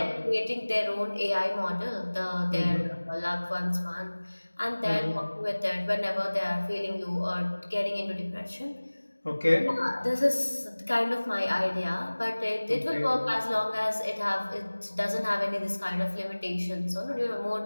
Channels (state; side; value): inverted; both; correlation -1.00